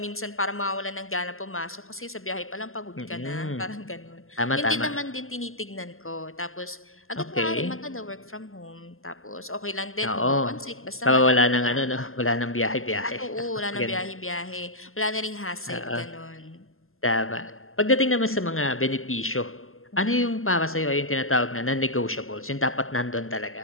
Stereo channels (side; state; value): right; late; 0.61 ms